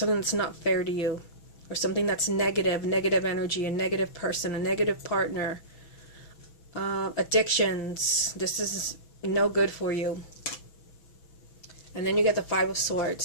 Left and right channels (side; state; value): right; late; 6.1 ms